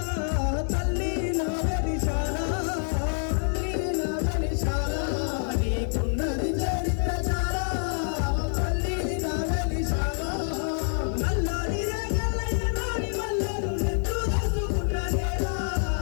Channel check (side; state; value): right; silent; 60 dB below the other